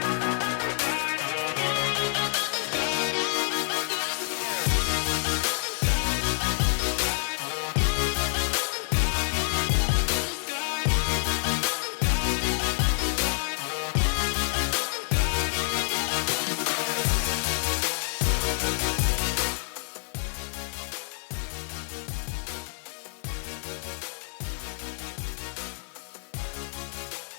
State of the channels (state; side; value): silent; right; 59 dB below the other